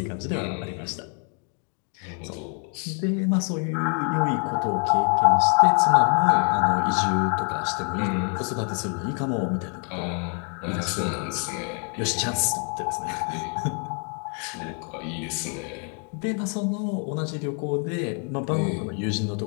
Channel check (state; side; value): quieter; right; 39.8 dB